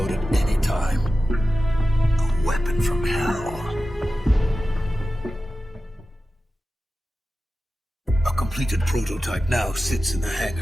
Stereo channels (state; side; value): normal; both; correlation 0.93